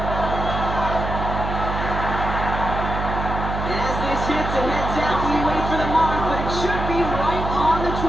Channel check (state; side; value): noise; right; hum, 4 dB below the sound